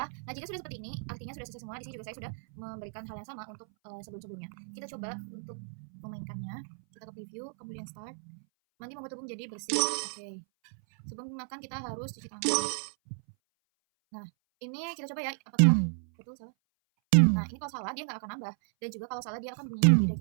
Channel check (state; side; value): silent; left; 56 dB below the other